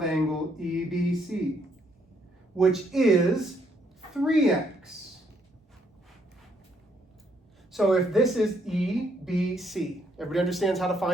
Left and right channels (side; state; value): both; normal; correlation 0.71